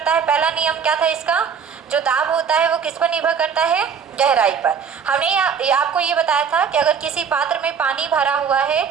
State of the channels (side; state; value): left; quieter; 6.8 dB